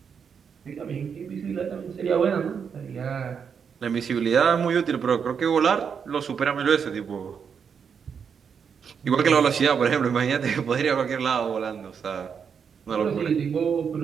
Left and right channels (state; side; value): quieter; left; 6.8 dB